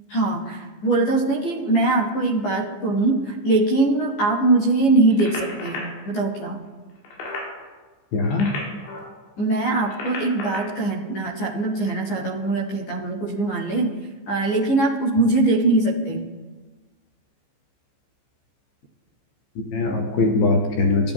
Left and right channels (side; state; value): right; late; 15 ms